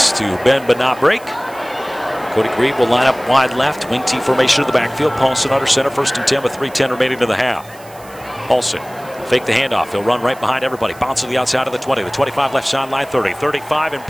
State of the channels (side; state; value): right; noise; hiss, 23 dB below the sound